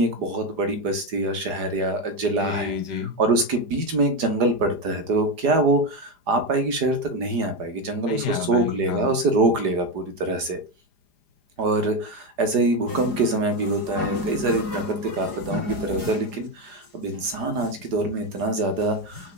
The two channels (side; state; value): left; late; 4.9 ms